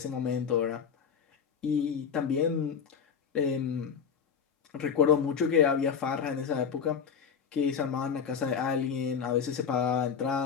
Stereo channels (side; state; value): right; quieter; 7.0 dB